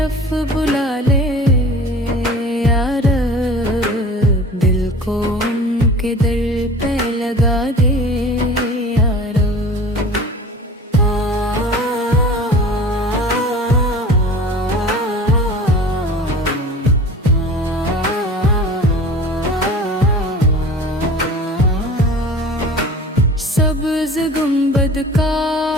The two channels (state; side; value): normal; both; correlation 0.40